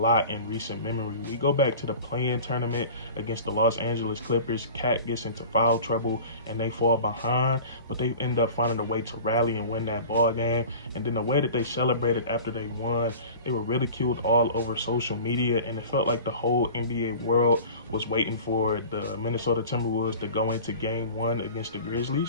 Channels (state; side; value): inverted; both; correlation -0.40